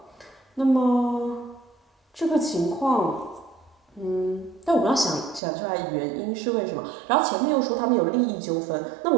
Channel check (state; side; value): drops out; left; at 5.4 s